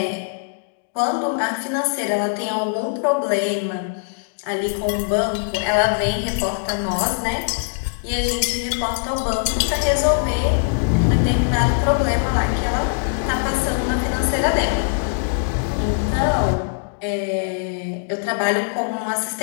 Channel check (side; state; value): right; silent; digital silence